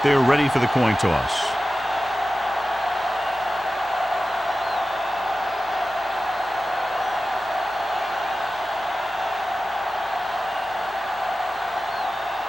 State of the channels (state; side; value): normal; both; correlation 0.95